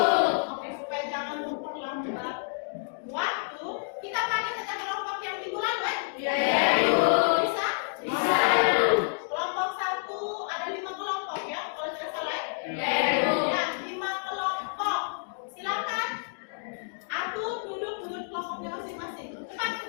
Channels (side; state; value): right; silent; digital silence